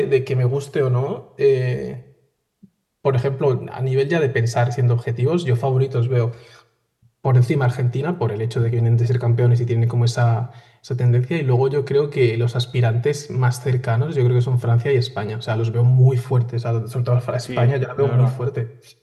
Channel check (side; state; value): both; identical; correlation 1.00